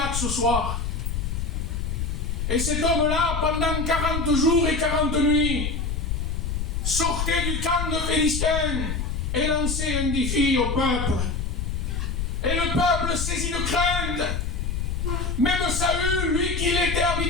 ce soir. Et cet homme-là, pendant 40 jours et 40 nuits, sortait du camp de Philistins et lançait un défi au peuple. Et le peuple saisi de crainte, même Saül, lui qui était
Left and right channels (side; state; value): left; noise; rumble, 2 dB below the sound